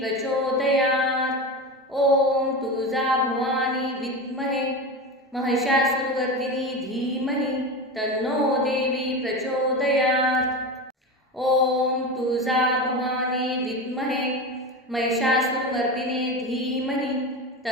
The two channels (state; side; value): normal; both; correlation 0.24